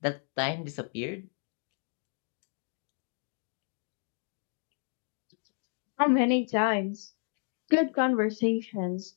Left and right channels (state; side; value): silent; right; 56 dB below the other